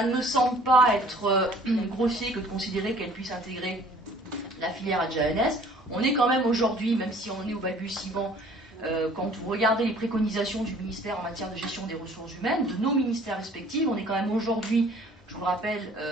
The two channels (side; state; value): both; normal; correlation 0.53